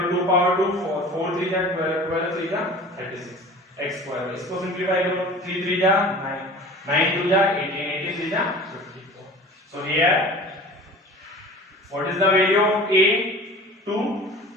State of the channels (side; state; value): both; normal; correlation 0.41